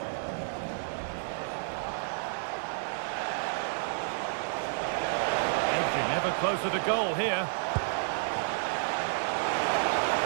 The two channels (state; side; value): silent; left; digital silence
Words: Edging ever closer to goal here.